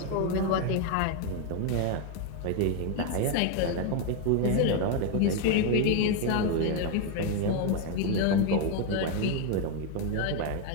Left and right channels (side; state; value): both; different; correlation 0.01